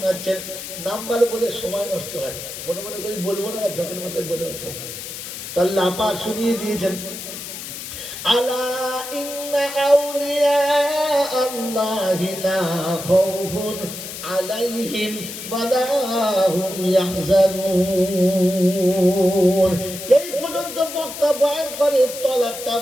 নাম্বার বলে সময় নষ্ট হয়, মনে মনে করি বলবো না, ঝকের মধ্যে বলে ওঠে। আল্লাহ পাক শুনিয়ে দিয়েছেন, আলা ইন্না আউলিয়া আল্লাহি লা খাউফুন আলাইহিম ওয়া লা হুম ইয়াহজানুন। এই পর্যন্ত বক্তা বয়ান করে, তলাকটা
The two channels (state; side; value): noise; left; hiss, 9 dB below the sound